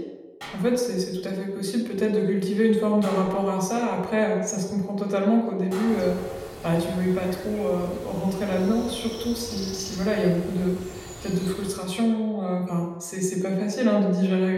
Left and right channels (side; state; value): both; identical; correlation 1.00